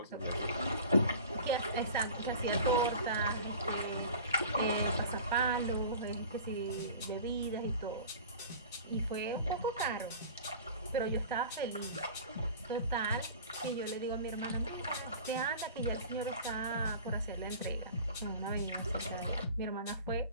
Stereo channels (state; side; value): inverted; both; correlation -0.40